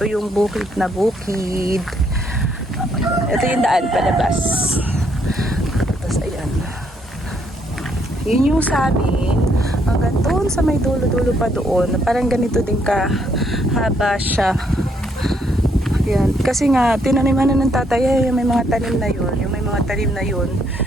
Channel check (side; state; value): both; normal; correlation 0.72